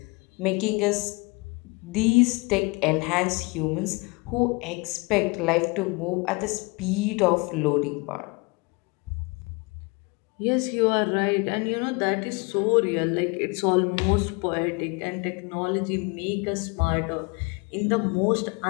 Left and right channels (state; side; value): quieter; right; 28.0 dB